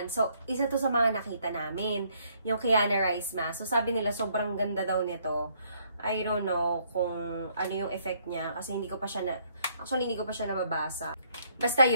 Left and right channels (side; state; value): both; inverted; correlation -0.67